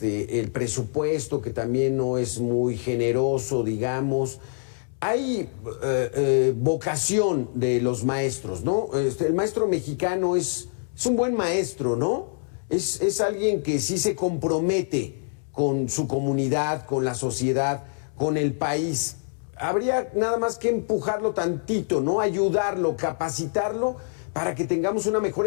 presupuesto que también no es muy generoso, digamos. Hay vocación de los maestros, ¿no? El maestro mexicano es un buen maestro, ¿no? Es alguien que sí se compromete con su comunidad, con la sociedad, con el país. Habría nada más que empujarlo tantito, ¿no? Ayudarlo, capacitarlo para que tengamos una mejor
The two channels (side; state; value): right; silent; digital silence